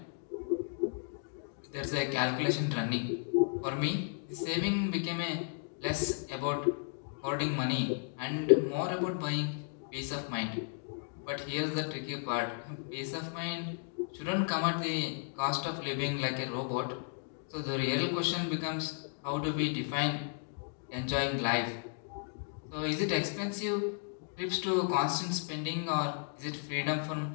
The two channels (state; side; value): silent; right; 55 dB below the other